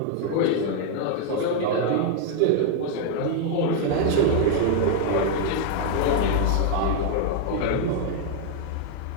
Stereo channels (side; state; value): both; different; correlation 0.00